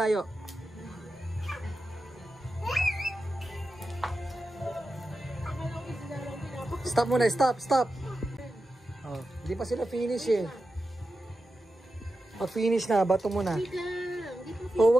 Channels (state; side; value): normal; both; correlation 0.91